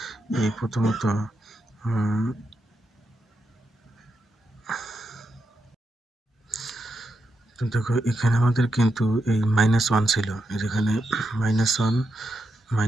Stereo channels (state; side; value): normal; both; correlation 0.84